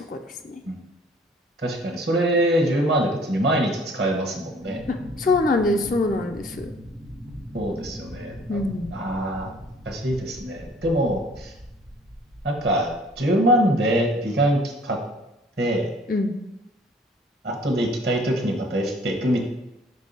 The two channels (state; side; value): normal; both; correlation 0.55